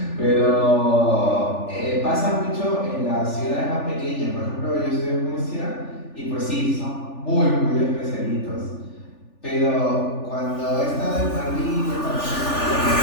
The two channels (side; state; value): right; late; 3.4 ms